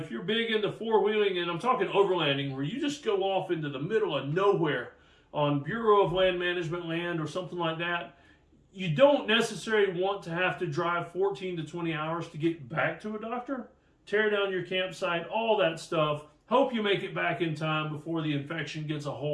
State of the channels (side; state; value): both; identical; correlation 1.00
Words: you're big into four-wheeling, and I'm talking overlanding, where you just go off into the middle of nowhere on Bureau of Land Management land or something like that, you don't necessarily want to have to drive 14 to 20 hours to get back to a doctor, tear down your campsite, all that stuff. Hope you make it back in time before the infection gets a